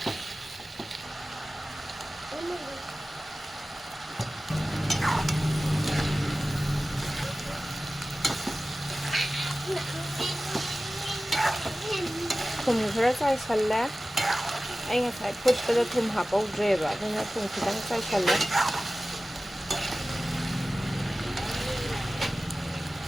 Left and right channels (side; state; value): both; normal; correlation 0.96